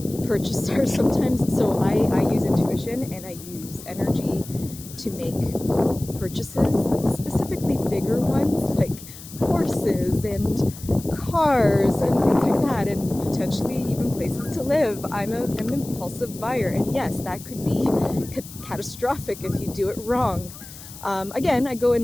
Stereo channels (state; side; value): noise; left; hiss, 16 dB below the sound